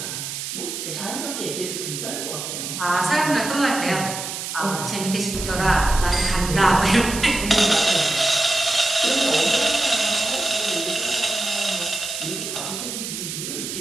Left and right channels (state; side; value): noise; right; hiss, 6 dB below the sound